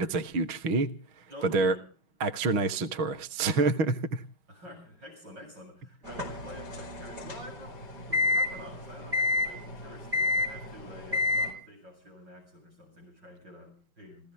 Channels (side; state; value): left; late; 6.2 ms